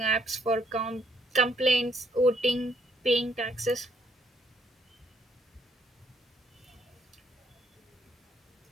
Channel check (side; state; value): both; normal; correlation 0.69